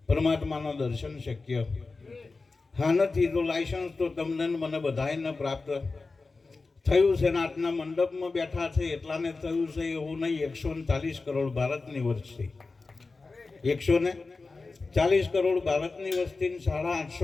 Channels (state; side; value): quieter; right; 3.9 dB